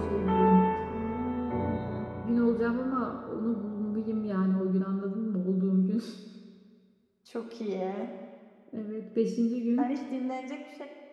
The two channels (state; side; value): identical; both; correlation 1.00